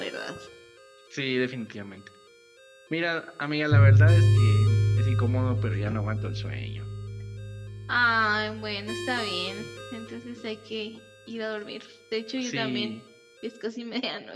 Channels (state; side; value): identical; both; correlation 1.00